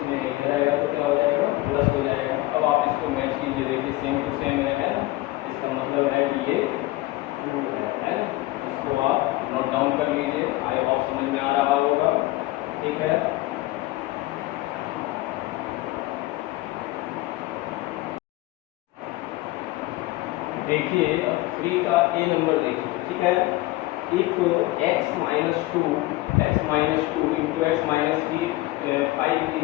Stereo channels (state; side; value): quieter; right; 18.9 dB